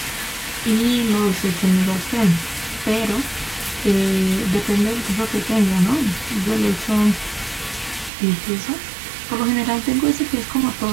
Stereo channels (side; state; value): left; drops out; at 8.1 s